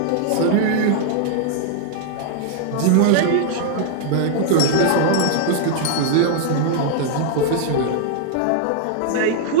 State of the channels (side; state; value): both; different; correlation 0.00